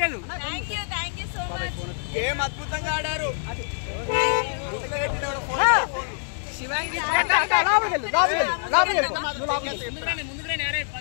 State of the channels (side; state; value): right; silent; digital silence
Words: థాంక్యూ సో మచ్ గేమ్ అద్భుతంగా ఆడారు శివాంగి ముందుగానే అరే